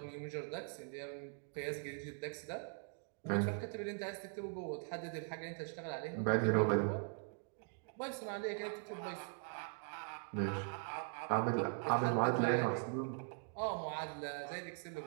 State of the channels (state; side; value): silent; left; 50 dB below the other